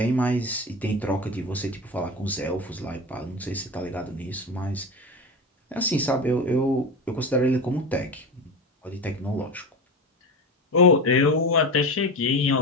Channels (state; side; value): normal; both; correlation 0.25